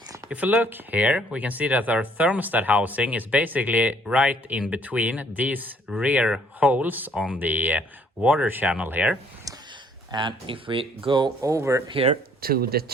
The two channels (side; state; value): both; normal; correlation 0.62